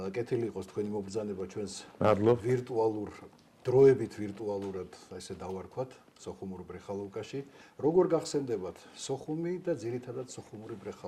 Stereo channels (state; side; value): identical; both; correlation 1.00